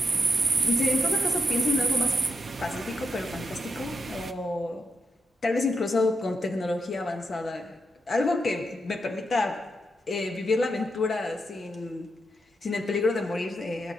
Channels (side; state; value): both; normal; correlation 0.83